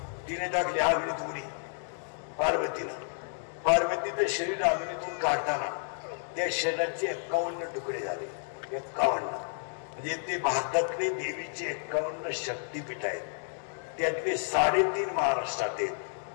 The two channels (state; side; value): silent; right; digital silence